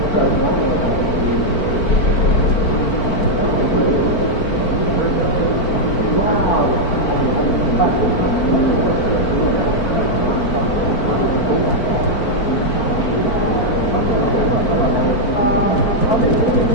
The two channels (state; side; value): late; right; 4.4 ms